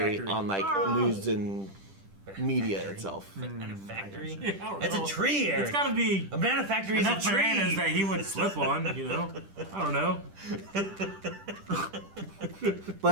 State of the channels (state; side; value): late; left; 10 ms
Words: factory. on like news and media itself. Banana factory? don't That's know. a tree, Eric. It's got to be a banana factory is a enough tree. bananas that he would slip on, you know? I don't know.